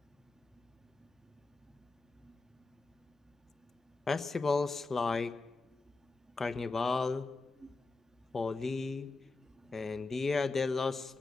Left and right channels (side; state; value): right; quieter; 3.7 dB